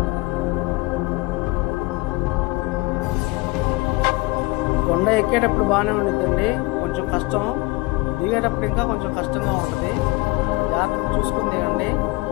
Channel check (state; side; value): quieter; right; 23.1 dB